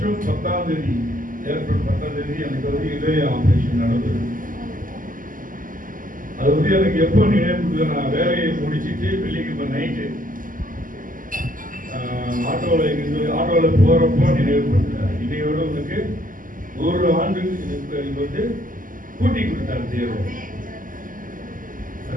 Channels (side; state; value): left; late; 0.39 ms